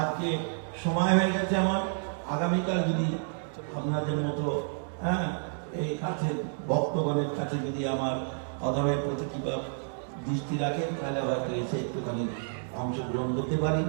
সময় হয়ে গেছে আমার। আগামীকাল যদি আপনাদের মতো এই কাছে ভক্তগণের কাছে যদি আমার অধমের প্রতি কিংবা দৃষ্টি রাখেন, তাহলে হয়তো এসে একটুখানি অংশগ্রহণ করতে পারি।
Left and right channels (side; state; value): left; silent; digital silence